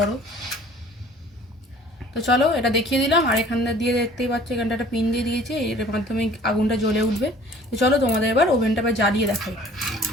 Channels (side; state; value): both; normal; correlation 0.51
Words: তো চলো, এটা দেখিয়ে দিলাম। আর এখানটা দিয়ে দেখতেই পাচ্ছ, এখানটা একটা পিন দিয়ে দিয়েছে, এর মাধ্যমে আগুনটা জ্বলে উঠবে। তো চলো তোমাদের এবার ওভেনটা আবার জ্বালিয়ে দেখাই।